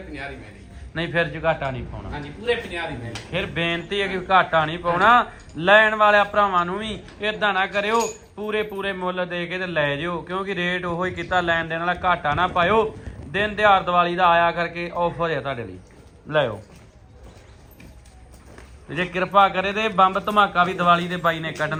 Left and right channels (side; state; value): both; identical; correlation 1.00